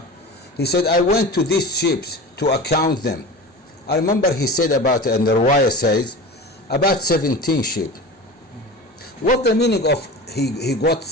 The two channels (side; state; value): both; normal; correlation 0.32